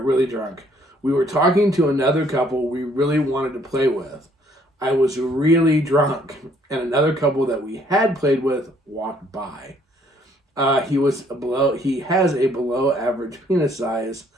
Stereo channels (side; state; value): both; normal; correlation 0.64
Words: really drunk. We were talking to another couple we really wanted to play with. I was really drunk, and another couple that we had played with walked by. He has a below average penis size,